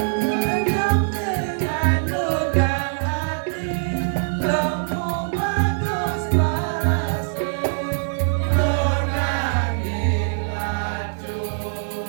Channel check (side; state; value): left; silent; digital silence